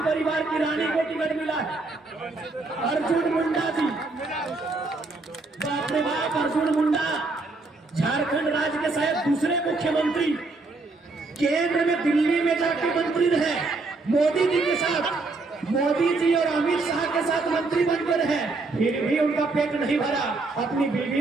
परिवार की रानी को टिकट मिला है। अर्जुन मुंडा जी, बाप रे बाप, अर्जुन मुंडा झारखंड राज्य के शायद दूसरे मुख्यमंत्री, केंद्र में दिल्ली में जाके मंत्री रहे, मोदी जी के साथ, मोदी जी और अमित शाह के साथ मंत्री बनकर रहे, फिर भी उनका पेट नहीं भरा, अपनी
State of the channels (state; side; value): quieter; left; 3.6 dB